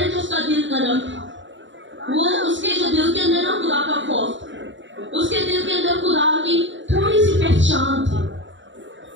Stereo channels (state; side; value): late; left; 0.54 ms